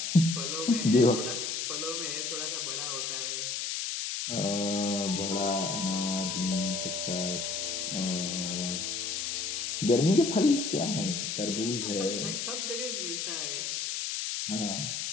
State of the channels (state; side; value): noise; left; hiss, 2 dB below the sound